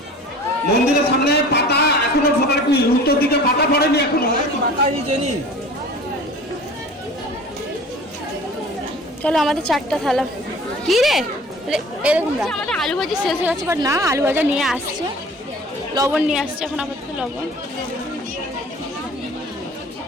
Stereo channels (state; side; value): normal; both; correlation 0.43